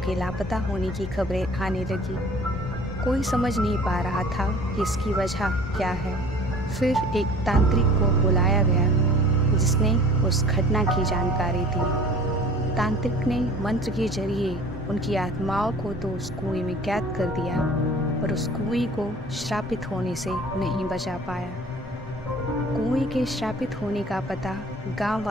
लापता होने की खबरें आने लगी। कोई समझ नहीं पा रहा था कि इसकी वजह क्या है। फिर एक तांत्रिक को बुलाया गया जिसने उस घटना की जानकारी दी। तांत्रिक ने मंत्र के जरिए उनकी आत्माओं को तो उस कुएं में कैद कर दिया, पर उस कुएं को श्रापित होने से नहीं बचा पाया। कुएं के श्रापित होने का पता गांव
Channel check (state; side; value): normal; both; correlation 0.47